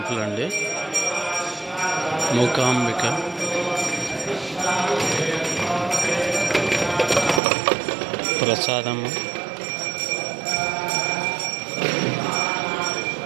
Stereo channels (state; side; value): drops out; left; at 7.4 s